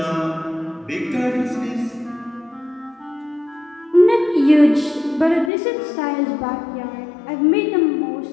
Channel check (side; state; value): right; drops out; at 5.5 s